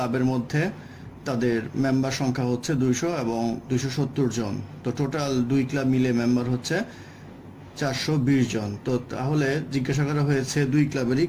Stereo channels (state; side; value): identical; both; correlation 1.00